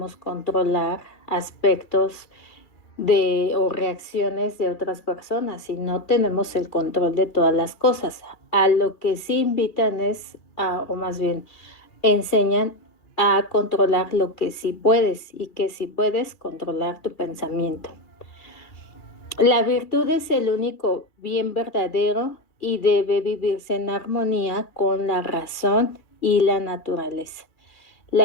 controlar aspectos o reacciones de otras personas y no tenemos el control de todas las cosas. A lo que sí invitan o más bien enseñan a controlar lo que sí puedes y que sí puedes controlar tu pensamiento. La virtud es el único bien verdadero y debe vivirse en armonía con la razón y la naturaleza.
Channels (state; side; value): late; right; 2.3 ms